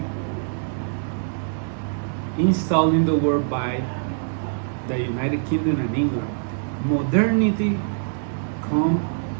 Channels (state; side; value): silent; left; 63 dB below the other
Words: installed in the world by the United Kingdom and England. Modernity